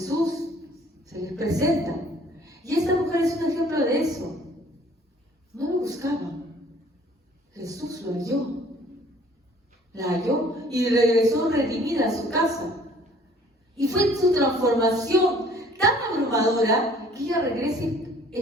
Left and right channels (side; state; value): both; normal; correlation 0.55